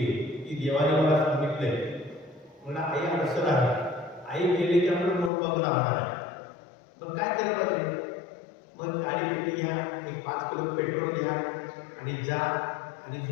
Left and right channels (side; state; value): right; drops out; at 5.3 s